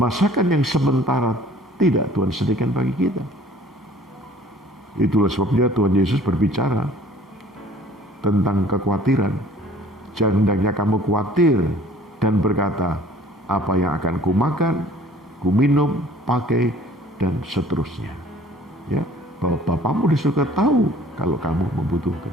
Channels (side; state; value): both; normal; correlation 0.52